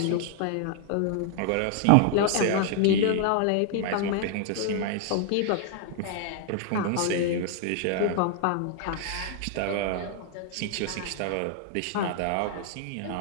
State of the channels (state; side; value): different; both; correlation 0.00